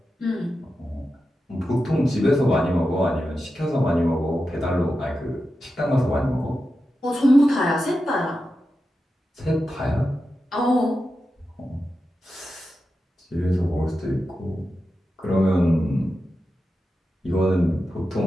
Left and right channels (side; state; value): both; normal; correlation 0.90